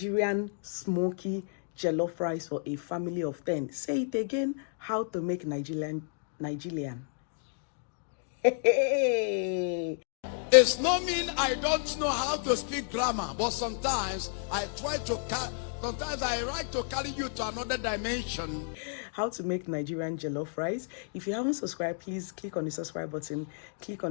smoky jollof rice for a family of 10. Say it again. How to make Nigerian. It's not mean I don't know how to speak grammar, but sometimes I try to sometimes I like to carry you to another dimension. How to make Nigerian jollof rice. If you haven't subscribed, please click on the subscribe button, click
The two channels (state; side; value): silent; right; digital silence